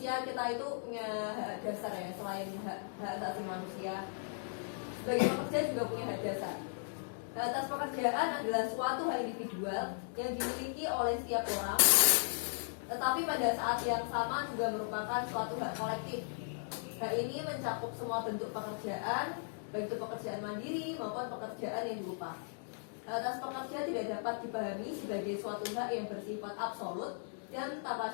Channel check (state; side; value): silent; right; digital silence